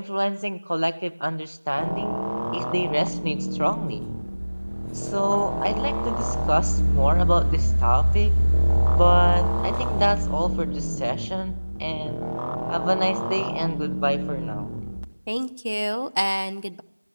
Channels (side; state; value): both; inverted; correlation -1.00